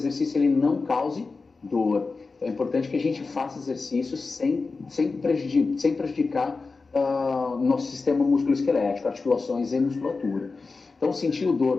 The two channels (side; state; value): right; quieter; 4.1 dB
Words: ele não cause dor. Então, é importante que a gente faça exercícios sem prejudicar nosso sistema musculoesquelético, articulações e musculatura. Então, sentiu